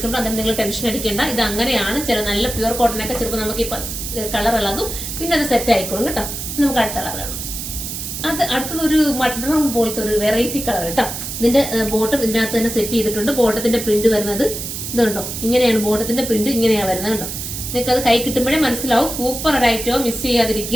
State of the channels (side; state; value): right; noise; hiss, 6 dB below the sound